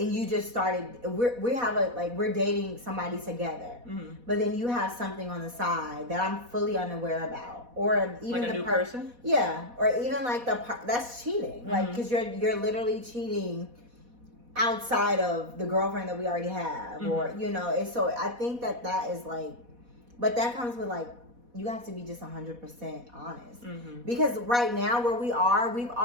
you just started, we're dating somebody together, but then you have something on the side that I'm fully unaware about, or even like a new person, or even like that's cheating, like because you're literally cheating outside of the girlfriend that we already have, or and so I think that is like, but that comes with like, you have to be just 100% honest, because right now where we are, we've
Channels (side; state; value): left; late; 4.1 ms